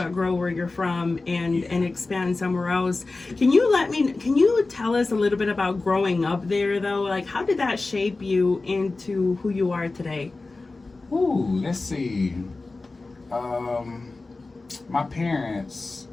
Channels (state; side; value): quieter; right; 3.5 dB